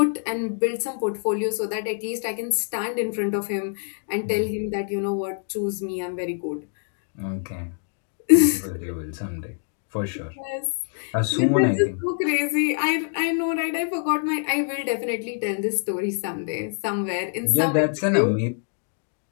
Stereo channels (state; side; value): silent; right; 62 dB below the other